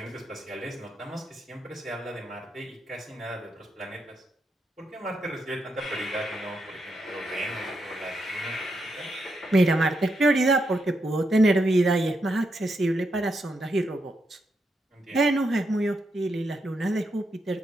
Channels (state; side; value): normal; both; correlation 0.82